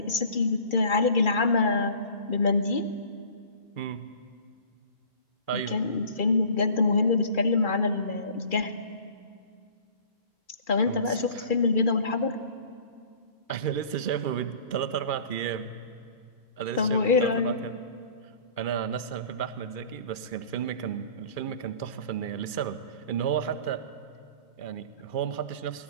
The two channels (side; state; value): right; late; 2.4 ms